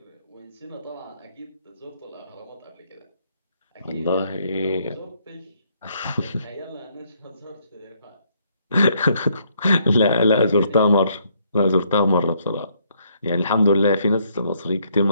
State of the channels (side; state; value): both; inverted; correlation -0.70